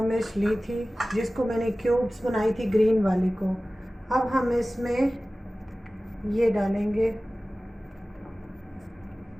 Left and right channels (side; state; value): both; normal; correlation 0.97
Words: मिर्च ली थी, जिसको मैंने क्यूब्स बनाई थी ग्रीन वाली को। अब हम इसमें ये डालेंगे,